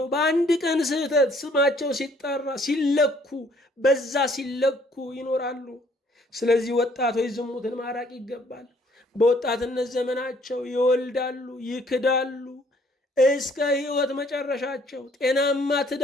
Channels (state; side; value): normal; both; correlation 0.62